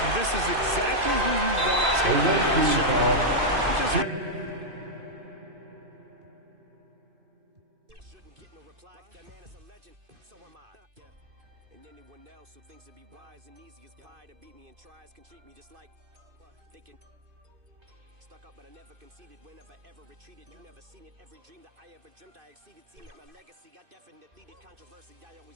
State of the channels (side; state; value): left; late; 2.5 ms